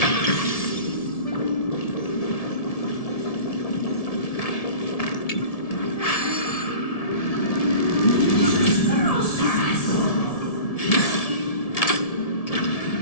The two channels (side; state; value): right; late; 1.7 ms